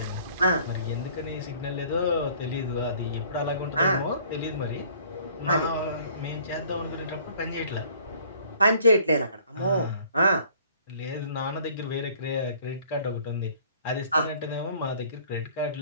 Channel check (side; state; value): both; inverted; correlation -0.55